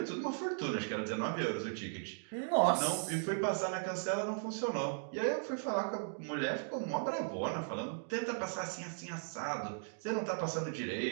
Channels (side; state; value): left; silent; digital silence